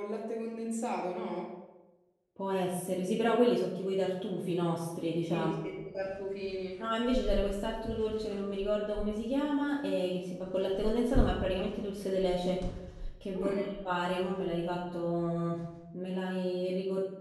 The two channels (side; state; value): both; identical; correlation 1.00